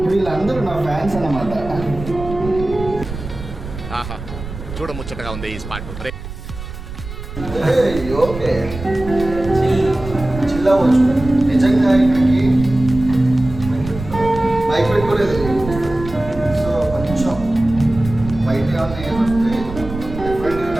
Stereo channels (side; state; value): right; noise; rumble, 11 dB below the sound